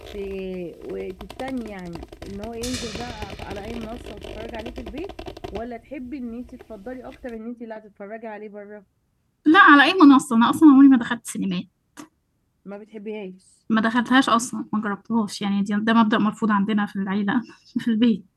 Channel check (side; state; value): both; identical; correlation 1.00